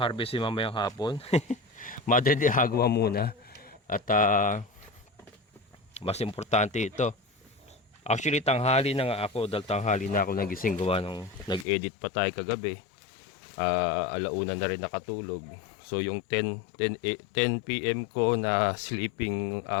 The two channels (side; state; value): right; drops out; at 11.7 s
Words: mamayang hapon. Madre de Agua muna. At mas importante ito. Actually, tanghali na nga ako. Dahil tanghali na ako nagising gawa nung nag-edit pa tayo kagabi. Alauna na rin nakatulog. So yung 10 PM ko na sleeping